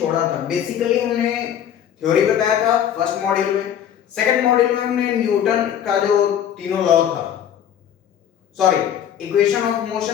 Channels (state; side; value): quieter; right; 9.7 dB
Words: था, बेसिकली हमने थ्योरी बताया था फर्स्ट मॉड्यूल में। सेकंड मॉड्यूल में हमने न्यूटन का जो तीनों लॉ था, सॉरी, इक्वेशन ऑफ